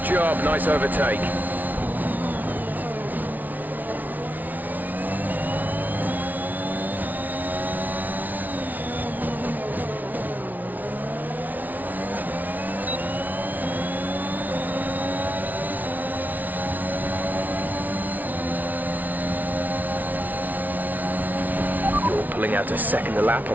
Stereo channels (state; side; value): late; left; 0.079 ms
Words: job, nice overtake. You're pulling out a second a lap